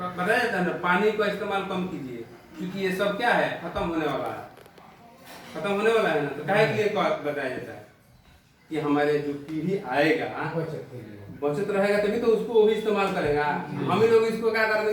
जाता है ना, पानी का इस्तेमाल कम कीजिए, क्योंकि ये सब क्या है? खत्म होने वाला है, खत्म होने वाला है ना। तो काहे के लिए बताया जाता है कि हमारे जो पीढ़ी आएगा बचत रहेगा तभी तो उसको वो भी इस्तेमाल करेगा। हम ही लोग इसको क्या कर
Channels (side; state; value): both; identical; correlation 1.00